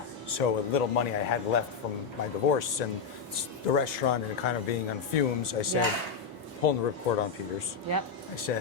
So with little money I had left from my divorce and the restaurant and kind of being on fumes, I said, Yeah. pulling the ripcord on Peter's. Yep. I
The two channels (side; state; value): right; quieter; 5.8 dB